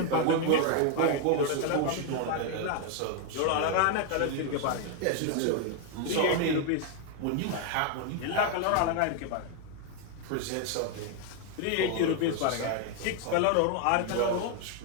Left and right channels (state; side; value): different; both; correlation 0.01